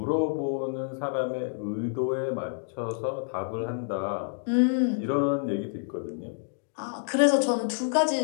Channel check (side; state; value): right; silent; digital silence